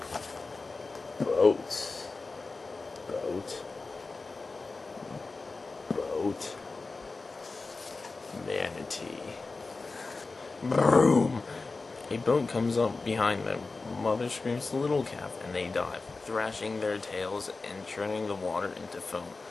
Boat. Boat. Boat. Manatee. Boom! A boat comes up behind them. Mother screams to little calf, and they dive, thrashing their tails and churning the water into foam.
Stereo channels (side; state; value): right; quieter; 3.8 dB